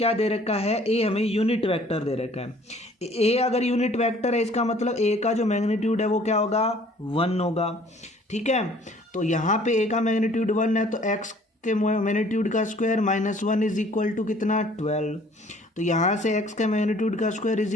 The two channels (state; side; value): normal; both; correlation 0.55